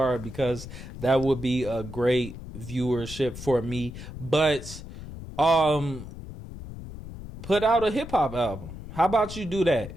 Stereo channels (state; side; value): noise; left; rumble, 12 dB below the sound